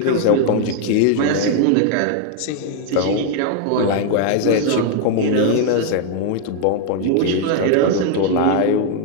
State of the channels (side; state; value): both; different; correlation 0.00